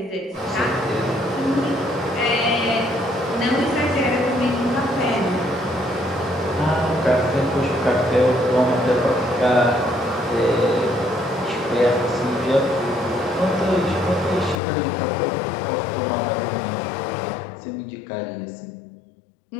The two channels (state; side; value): drops out; right; at 14.6 s